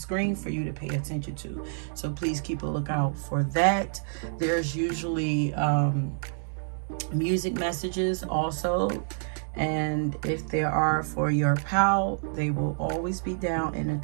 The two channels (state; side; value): silent; left; digital silence